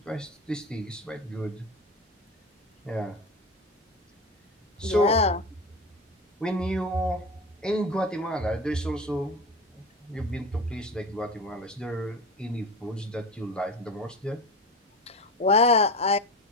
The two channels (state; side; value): normal; both; correlation 0.27